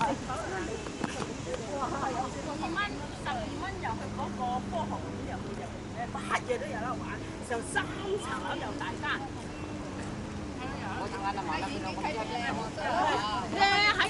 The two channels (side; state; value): both; identical; correlation 1.00